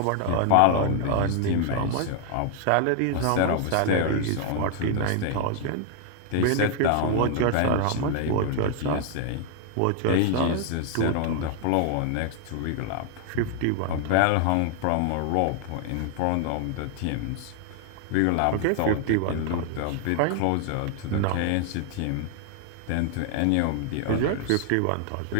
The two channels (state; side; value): different; both; correlation 0.00